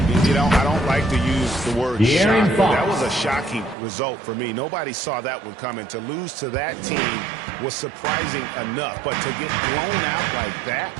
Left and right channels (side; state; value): left; drops out; at 3.8 s